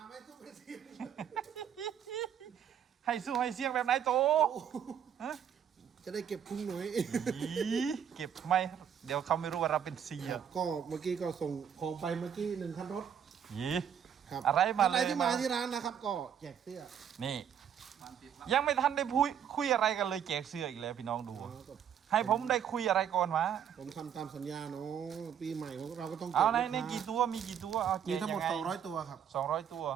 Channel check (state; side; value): quieter; left; 8.6 dB